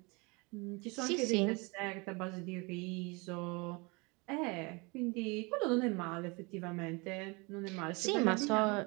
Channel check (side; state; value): left; quieter; 28.0 dB